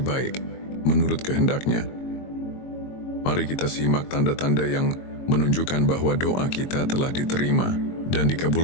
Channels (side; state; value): right; late; 22 ms